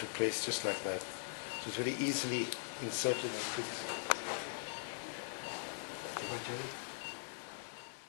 place just like that. So it's very easily inserted and fixed.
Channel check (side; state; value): right; silent; digital silence